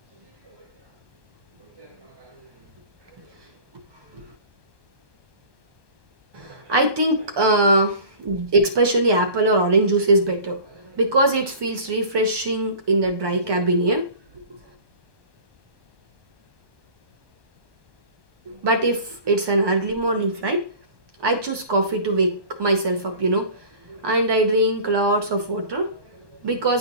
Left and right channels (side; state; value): left; late; 1.2 ms